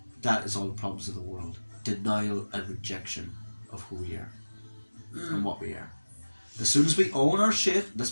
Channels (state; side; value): inverted; both; correlation -1.00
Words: That is all the problems of the world. Denial and rejection of who we are and what we are. As soon as we own our shit,